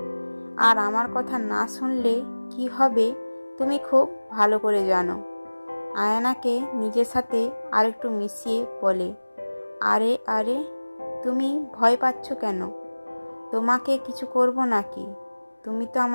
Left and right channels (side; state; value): both; inverted; correlation -1.00